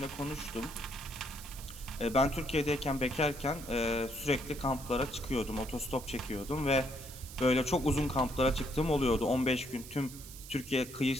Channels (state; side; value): noise; right; hiss, 15 dB below the sound